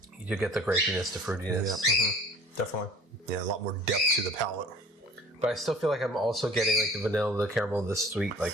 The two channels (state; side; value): normal; both; correlation 0.49